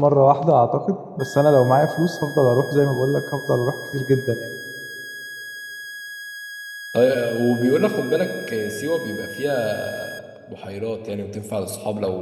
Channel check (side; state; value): both; identical; correlation 1.00